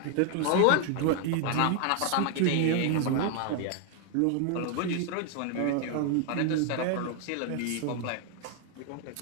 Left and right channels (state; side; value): different; both; correlation 0.01